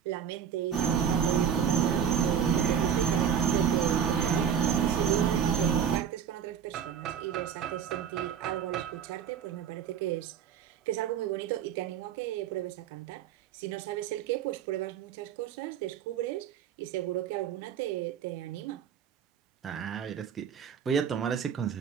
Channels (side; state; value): left; quieter; 8.1 dB